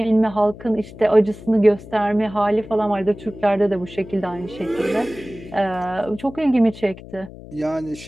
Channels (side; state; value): left; noise; hum, 16 dB below the sound